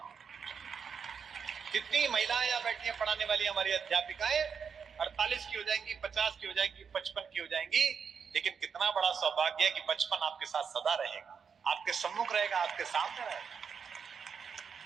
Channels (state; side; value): quieter; left; 6.4 dB